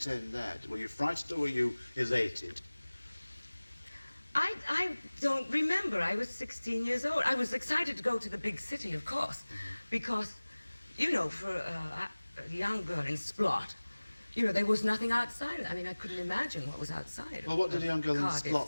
there? Were you frightened or were you elated? I don't remember. I was 16 years old. I was excited to go to the big city, of course, because, you know, for a young girl in Splot, you know, there was nothing outside. I mean, I couldn't imagine what was outside. Well, what did a young girl in Cardiff,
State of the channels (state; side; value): inverted; both; correlation -1.00